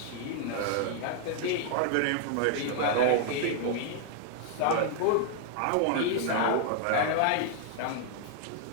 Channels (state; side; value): different; both; correlation 0.00